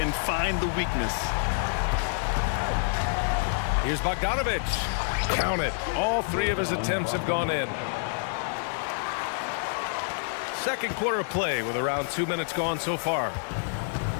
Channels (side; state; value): right; silent; digital silence